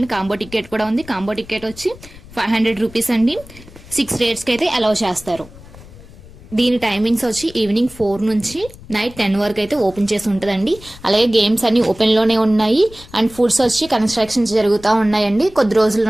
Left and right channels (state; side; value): noise; left; rumble, 19 dB below the sound